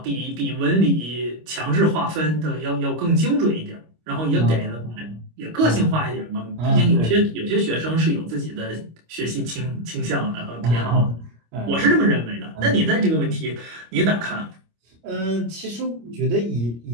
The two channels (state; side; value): late; left; 25 ms